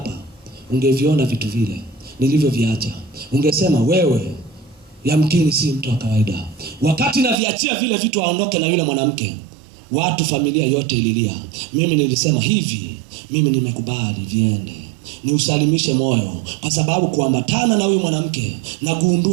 ungeviona vitu vile nilivyoviacha. Ungesema wewe yamkini si mtu wa kawaida. Wakati naviachia vile vitu aondoke na yule mwanamke, watu, familia yote ililia. Mimi nilisema hivi, mimi nimekubali viende, ni usalimishe moyo, kwa sababu kuambatana na huyo mwanamke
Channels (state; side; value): drops out; left; at 7.4 s